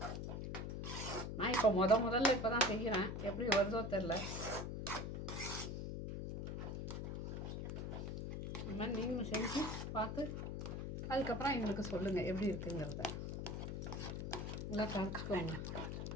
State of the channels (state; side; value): noise; left; hum, 4 dB below the sound